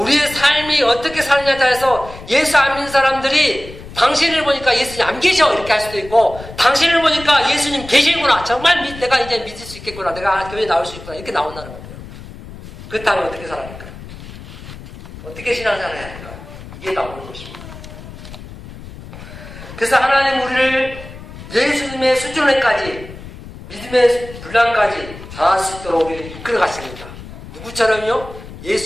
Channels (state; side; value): noise; left; rumble, 15 dB below the sound